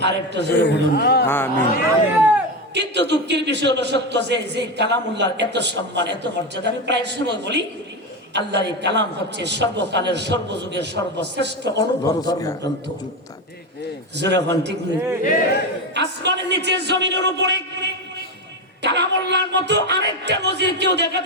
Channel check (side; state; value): both; normal; correlation 0.16